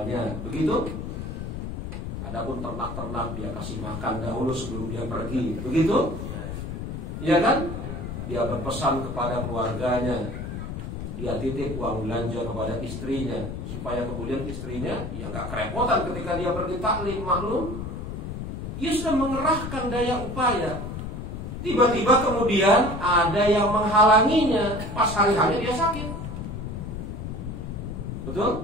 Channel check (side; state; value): left; noise; rumble, 6 dB below the sound